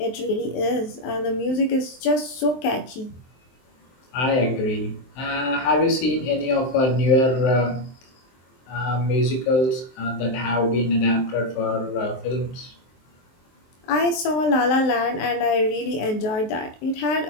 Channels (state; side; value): late; right; 23 ms